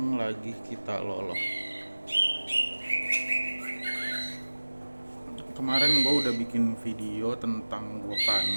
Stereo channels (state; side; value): inverted; both; correlation -1.00